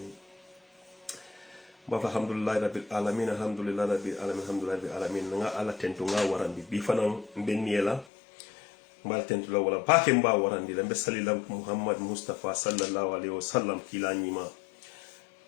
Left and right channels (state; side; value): drops out; right; at 8.1 s